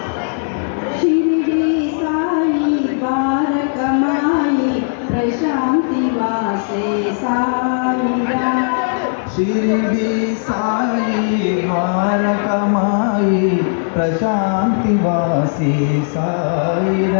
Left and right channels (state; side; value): silent; right; 67 dB below the other